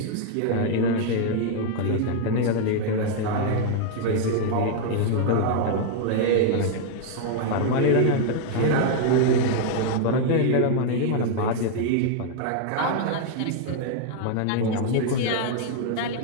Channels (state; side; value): different; both; correlation -0.01